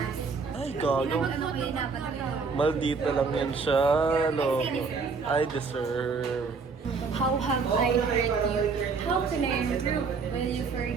Ay, gago. Maldita lang yan siya. No. I deserve. How have I hurt you? How can I improve? Will you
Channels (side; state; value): left; quieter; 4.9 dB